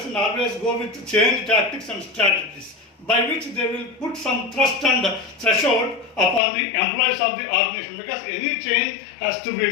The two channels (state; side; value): drops out; right; at 6.4 s